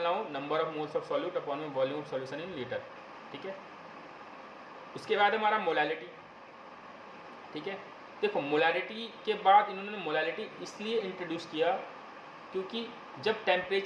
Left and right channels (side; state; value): both; identical; correlation 1.00